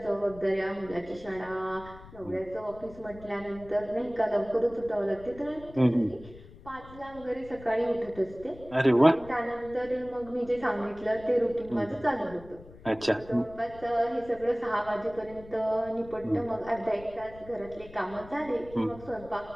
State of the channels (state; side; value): noise; left; rumble, 19 dB below the sound